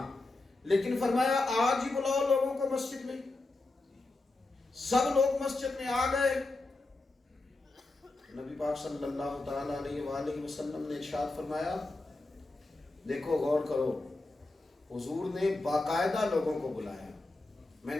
لیکن فرمایا آج ہی بلاؤ لوگوں کو مسجد میں. سب لوگ مسجد میں آ گئے. نبی پاک صلی اللہ تعالی علیہ وآلہ وسلم نے ارشاد فرمایا، دیکھو غور کرو، حضور نے باقاعدہ لوگوں کو بلایا. میں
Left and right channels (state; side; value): quieter; right; 3.1 dB